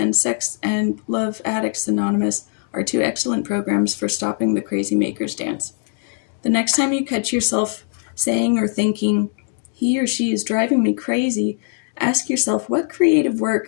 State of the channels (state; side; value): silent; right; digital silence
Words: Sex and Love Addicts Anonymous are 2 excellent programs for stopping the crazy maker's dance. The next time you catch yourself saying or thinking, he or she is driving me crazy, ask yourself what creative